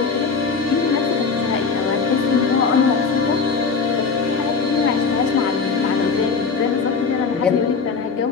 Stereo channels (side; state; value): right; quieter; 5.0 dB